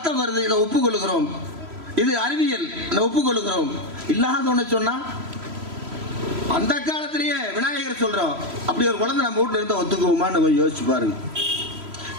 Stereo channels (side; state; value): left; late; 3.0 ms